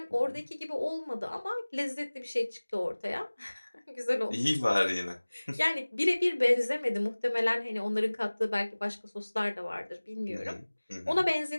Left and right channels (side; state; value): both; inverted; correlation -1.00